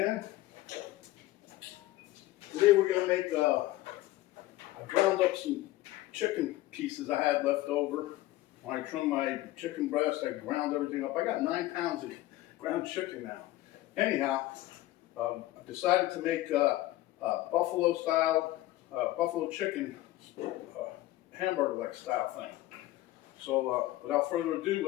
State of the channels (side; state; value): right; quieter; 16.6 dB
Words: Today we're gonna make, I ground up some chicken pieces I had left over. When I trimmed my chicken breast, I ground everything up. I got 9 pounds of ground chicken now. Anyhow, I decided to make buffalo style, buffalo chicken hamburger-like style thing. So without further ado,